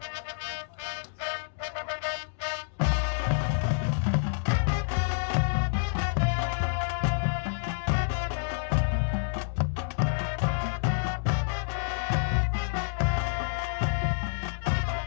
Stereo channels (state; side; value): silent; right; digital silence